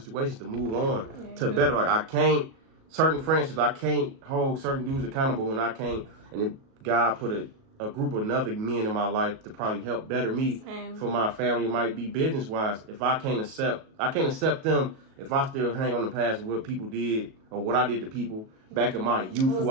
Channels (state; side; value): late; left; 37 ms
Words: to move on to better. Like, certain friendships, I can't hold certain dudes accountable when I can't. And if God put a group of other men in my life to probably help better me for my family. It might be business wise. If I can't accept them if I still hang on the past of what people did or what I did to people back in my youth who